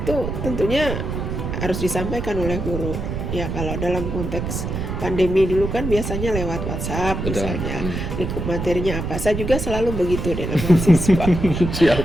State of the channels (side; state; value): right; noise; rumble, 4 dB below the sound